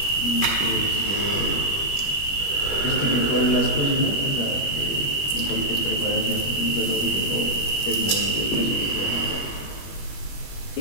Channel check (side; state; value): right; late; 21 ms